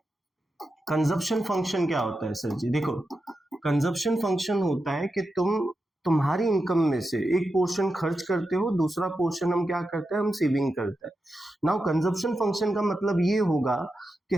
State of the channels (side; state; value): both; normal; correlation 0.89